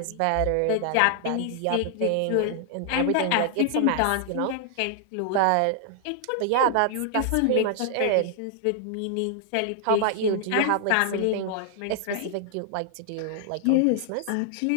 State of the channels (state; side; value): different; both; correlation -0.01